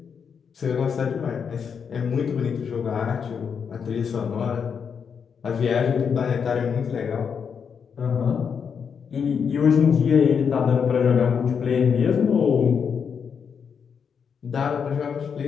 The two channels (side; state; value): right; quieter; 6.7 dB